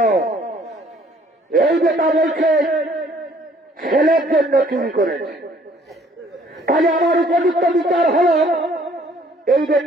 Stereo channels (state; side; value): normal; both; correlation 0.60